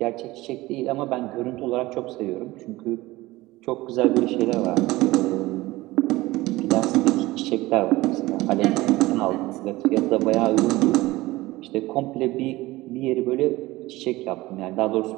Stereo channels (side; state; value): left; quieter; 19.0 dB